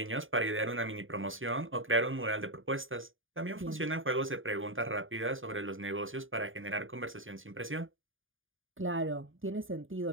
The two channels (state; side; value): late; left; 0.58 ms